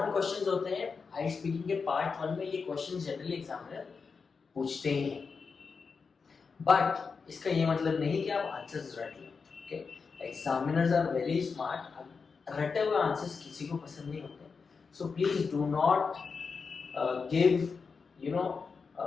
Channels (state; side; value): quieter; right; 5.1 dB